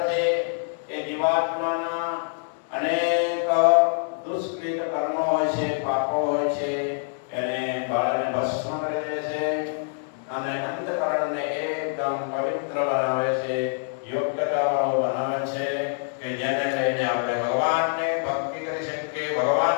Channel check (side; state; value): right; silent; 61 dB below the other